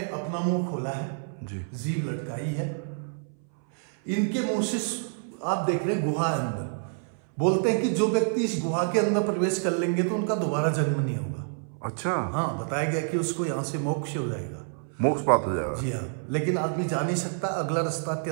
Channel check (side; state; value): left; silent; 60 dB below the other